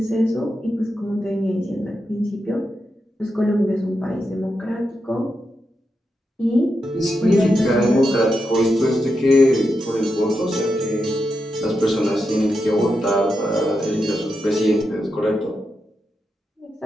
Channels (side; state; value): both; normal; correlation 0.86